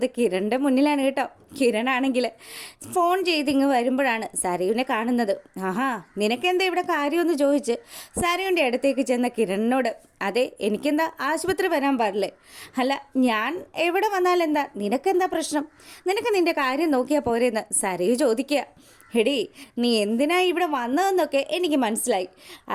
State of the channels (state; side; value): identical; both; correlation 1.00